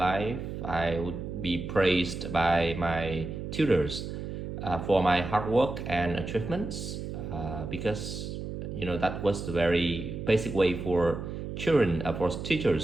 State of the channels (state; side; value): noise; right; hum, 6 dB below the sound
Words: I would be praised by my tutors for my hard work and achievements because that was the very basic way for children, for